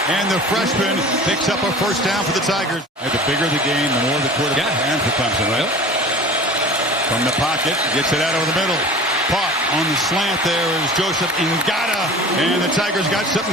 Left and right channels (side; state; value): both; normal; correlation 0.40